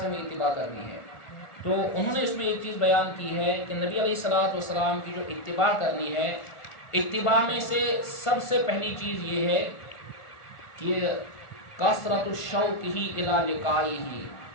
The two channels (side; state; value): right; late; 1.4 ms